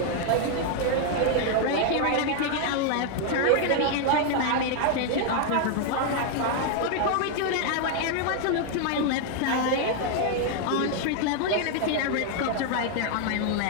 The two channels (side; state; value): both; different; correlation 0.00